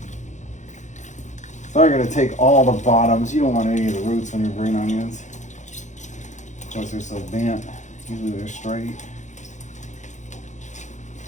So I'm going to take all the bottoms. You don't want any of the roots on your green onions because they're so bent. Usually they're straight.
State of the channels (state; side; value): late; right; 0.35 ms